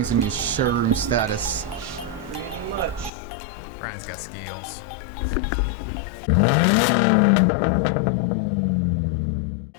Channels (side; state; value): right; drops out; at 3.1 s